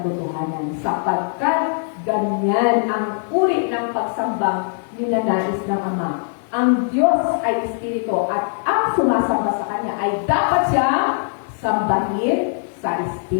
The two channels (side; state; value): right; silent; digital silence